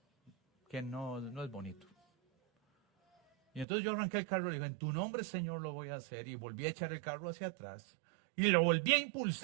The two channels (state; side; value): drops out; left; at 3.7 s